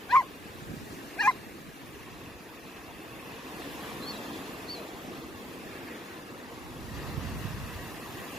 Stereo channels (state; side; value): normal; both; correlation 0.72